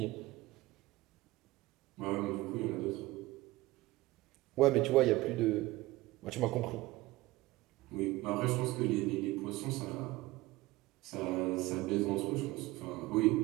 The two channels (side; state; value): left; quieter; 19.3 dB